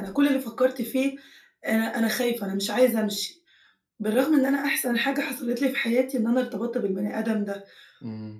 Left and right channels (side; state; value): both; identical; correlation 1.00